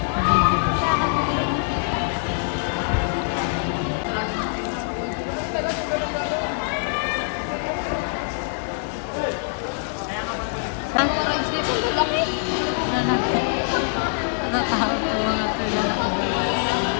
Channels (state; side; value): silent; right; 56 dB below the other